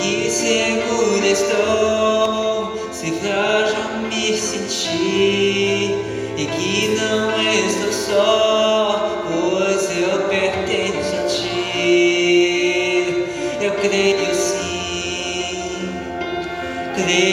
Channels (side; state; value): both; identical; correlation 1.00